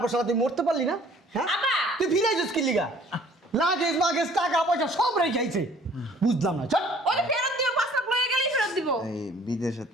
পর শালা তুই মরতে পারলি না হ্যাঁ আব্বা তুই ফিরাই যাস কি লিগা লাগেজ মাগেজ টাকা পয়সা সব রেখে আইছে বুঝলাম না চল ওই ফেরত দিও 5 লাখ লয়ে গেলেই ফেরত দিব এই বিদেশের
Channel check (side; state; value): both; normal; correlation 0.55